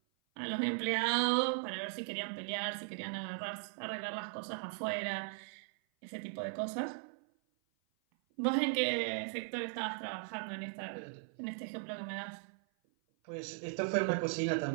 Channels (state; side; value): silent; left; 52 dB below the other